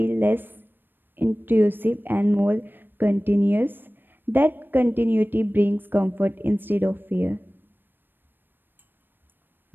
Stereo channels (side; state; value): left; late; 0.095 ms